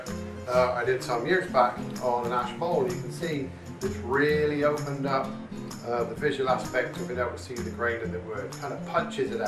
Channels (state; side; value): identical; both; correlation 1.00